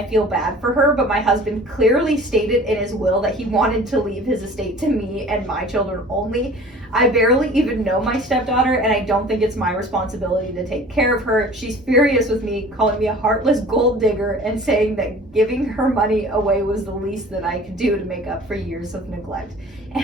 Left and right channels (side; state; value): both; normal; correlation 0.45